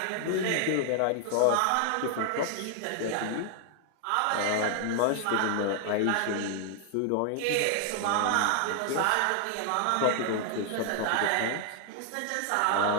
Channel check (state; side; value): different; both; correlation 0.00